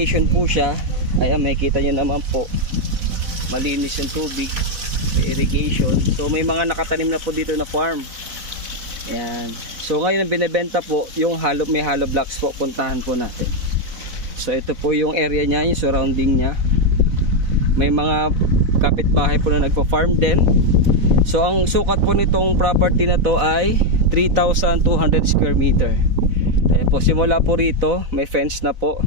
po siya. Ayan, makikita nyo naman po. Malinis yung tubig. May irrigation. So may mga nakatanim na po dito na farm. Ayan. So ngayon ang binibenta po, yung may hollow blocks po, puntahan po natin. So ito po yung area niya, yung surrounding niya. May mga kapitbahay po na nagpa-farm din. So ang sukat po nitong property na to ay 3,200 square meter. Ayan po, simula po rito may fence na po,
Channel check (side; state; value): left; late; 4.0 ms